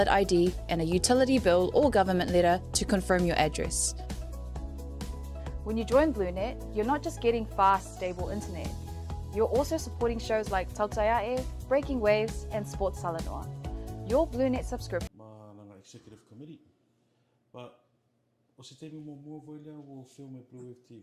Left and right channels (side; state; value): both; identical; correlation 1.00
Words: ID and a utility bill or government letter to confirm your address. When you join BluNet, you're not just getting fast, stable internet. You're also supporting shows like Tautuana, Breaking Waves, and Sports Talanoa. Your BluNet subscription. Ma executive committee. But o se temi mo mua voi lea o filme Blue